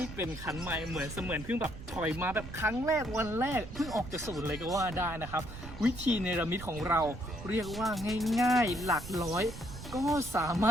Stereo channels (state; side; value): noise; right; rumble, 12 dB below the sound